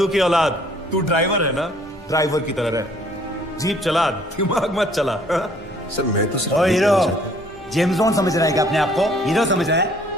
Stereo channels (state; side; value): normal; both; correlation 0.59